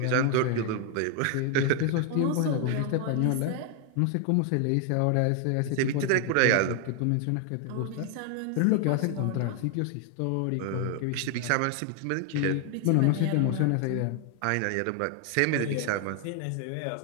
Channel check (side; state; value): both; different; correlation 0.00